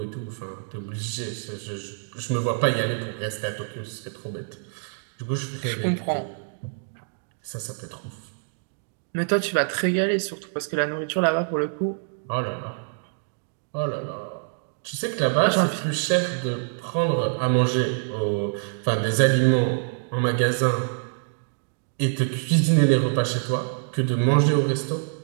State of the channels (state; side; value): silent; left; digital silence